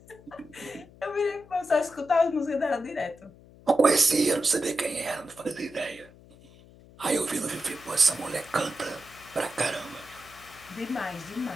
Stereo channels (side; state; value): left; noise; hum, 23 dB below the sound